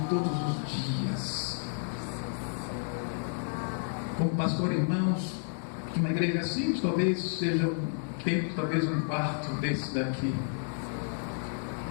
todos os dias. Como pastor, irmãos, de uma igreja simples, talvez seja um templo, talvez um quarto desse daqui.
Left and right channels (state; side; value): silent; right; digital silence